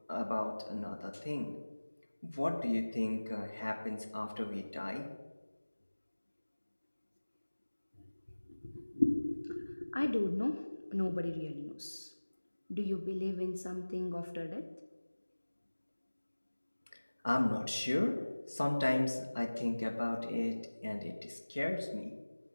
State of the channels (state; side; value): inverted; both; correlation -1.00